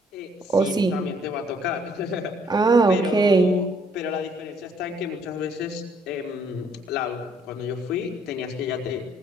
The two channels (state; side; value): normal; both; correlation 0.65